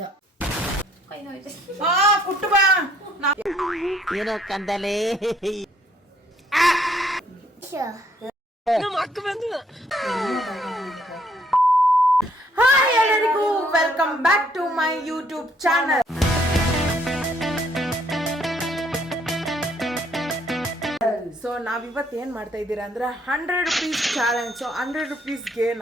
ಕುಟ್ಟು ಬಾ ಏನೋ ಕಂದಲೆ ಹಾಯ್ ಎಲ್ಲರಿಗೂ welcome back to my YouTube channel. So ನಾವಿವತ್ತು ಏನು ಮಾಡ್ತಾ ಇದ್ದೀರಾ ಅಂದ್ರೆ 100 ರುಪೀಸ್ ಚಾಲೆಂಜ್. ಸೊ 100 ರುಪೀಸ್ಗೆ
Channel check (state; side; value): normal; both; correlation 0.66